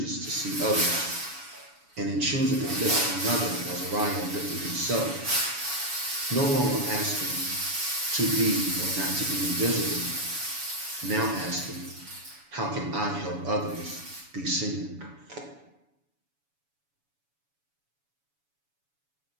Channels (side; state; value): left; late; 7.1 ms